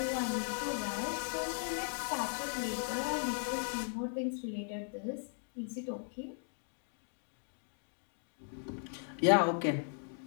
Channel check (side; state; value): right; silent; 53 dB below the other